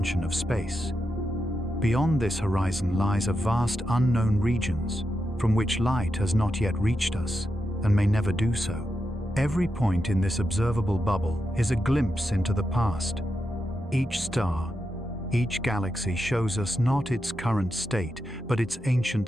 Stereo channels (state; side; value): normal; both; correlation 0.87